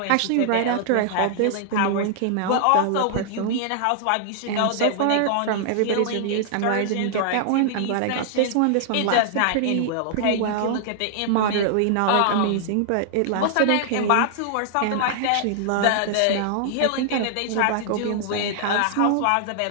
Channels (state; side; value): different; both; correlation -0.01